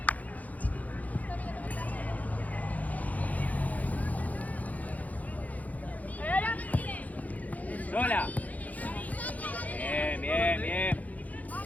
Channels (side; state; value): right; late; 0.076 ms